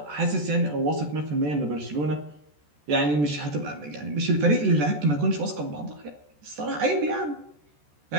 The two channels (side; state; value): left; late; 14 ms